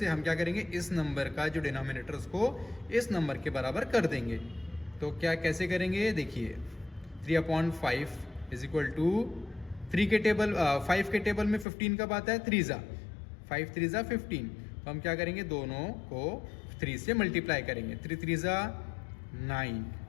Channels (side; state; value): right; drops out; at 11.7 s